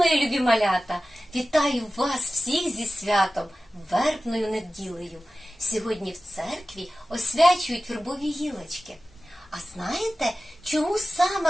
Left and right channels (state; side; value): normal; both; correlation 0.96